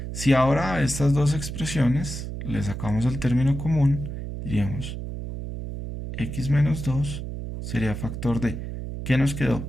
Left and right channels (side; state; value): right; noise; hum, 7 dB below the sound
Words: si ahora a estas dos expresiones le sacamos el término común, diríamos x menos 2 sería factor de, ¿qué nos quedó?